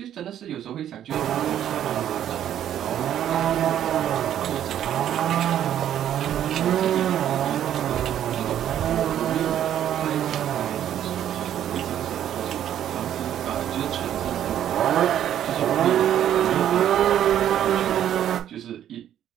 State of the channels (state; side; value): quieter; left; 10.7 dB